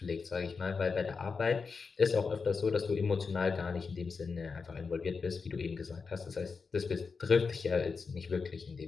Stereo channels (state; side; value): quieter; right; 5.0 dB